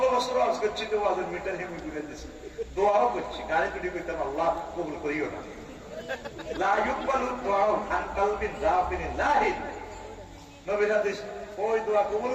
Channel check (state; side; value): identical; both; correlation 1.00